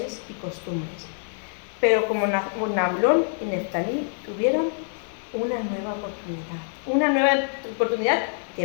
y costumbres. Pero como Nabulón y Neftalí tuvieron una nueva oportunidad de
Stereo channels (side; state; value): right; silent; digital silence